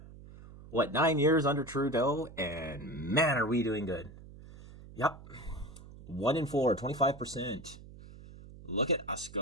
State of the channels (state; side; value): noise; right; hum, 17 dB below the sound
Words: 9 years under Trudeau, and man, are we doing good. Yep. 1 in 4, 25%. Look at us